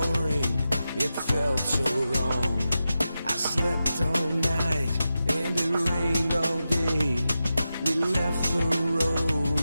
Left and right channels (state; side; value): inverted; both; correlation -0.91